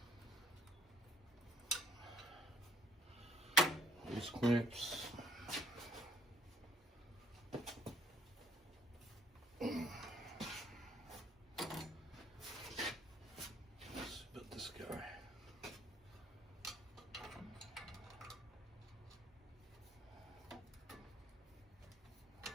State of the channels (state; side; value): normal; both; correlation 0.61